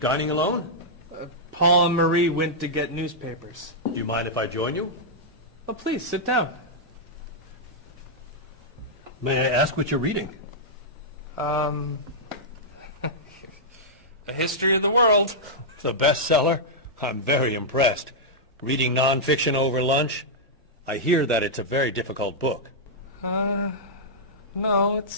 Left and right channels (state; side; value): normal; both; correlation -0.08